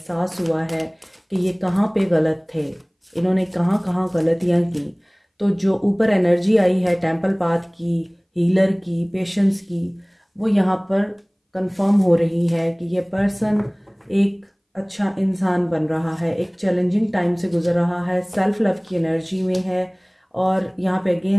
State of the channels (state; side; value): identical; both; correlation 1.00